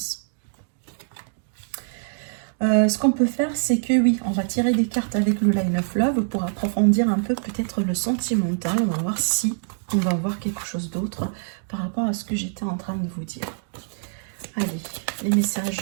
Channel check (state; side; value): silent; left; digital silence